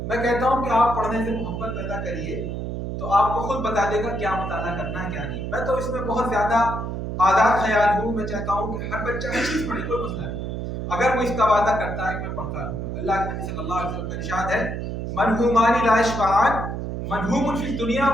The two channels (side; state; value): right; noise; hum, 4 dB below the sound